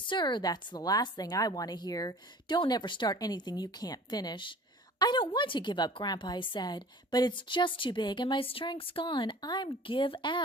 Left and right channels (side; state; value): both; normal; correlation 0.45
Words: that's the last thing I want to hear. Don't ever start anything you can't finish." "I don't want to give up, Grandpa," I said, "but it's just too big and my strength's gone. I'm give